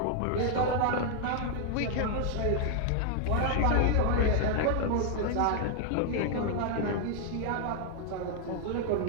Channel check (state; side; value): different; both; correlation 0.00